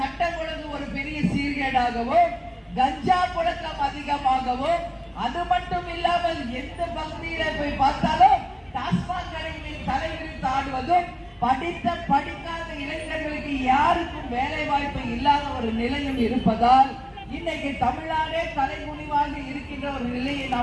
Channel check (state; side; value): identical; both; correlation 1.00